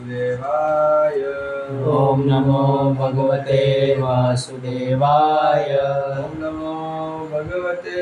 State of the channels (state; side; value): identical; both; correlation 1.00